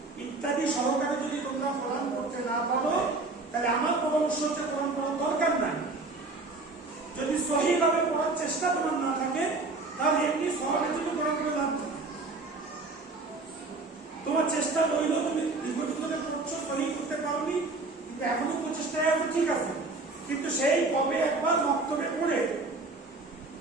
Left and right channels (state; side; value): quieter; left; 3.5 dB